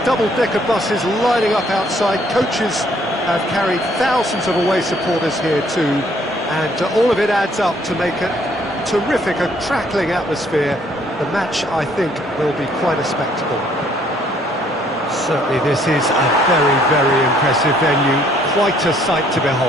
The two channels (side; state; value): both; normal; correlation 0.64